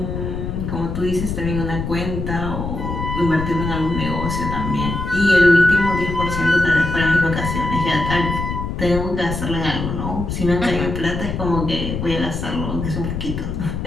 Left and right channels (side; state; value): left; noise; rumble, 4 dB below the sound